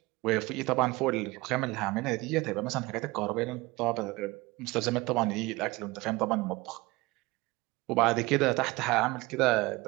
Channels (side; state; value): left; quieter; 22.0 dB